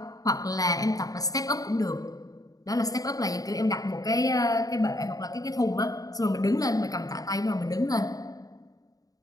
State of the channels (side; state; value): right; late; 0.18 ms